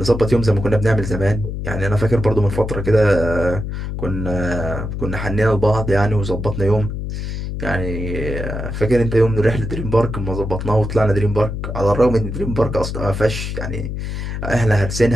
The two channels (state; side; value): noise; left; hum, 5 dB below the sound